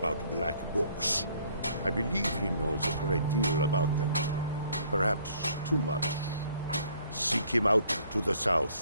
black books. I believe he knows a great deal about them. Perhaps too much. Seek him out to the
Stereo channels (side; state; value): both; inverted; correlation -0.61